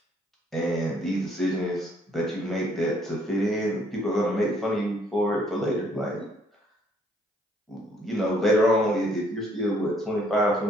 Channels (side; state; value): both; normal; correlation 0.65